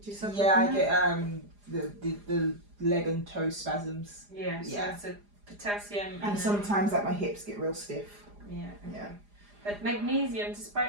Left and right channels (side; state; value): left; late; 4.9 ms